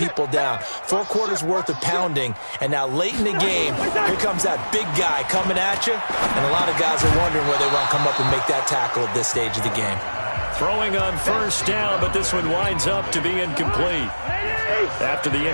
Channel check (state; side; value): inverted; both; correlation -1.00